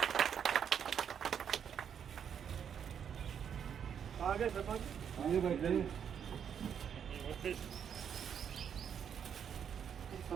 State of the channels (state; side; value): quieter; left; 8.1 dB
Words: आगे शर्मा जी,